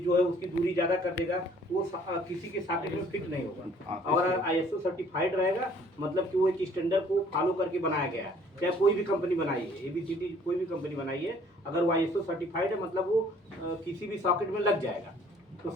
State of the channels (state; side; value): normal; both; correlation 0.57